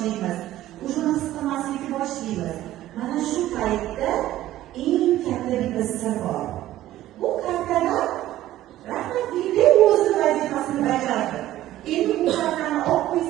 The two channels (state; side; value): quieter; left; 14.3 dB